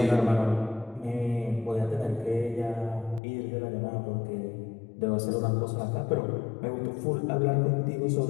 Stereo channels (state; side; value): drops out; right; at 3.2 s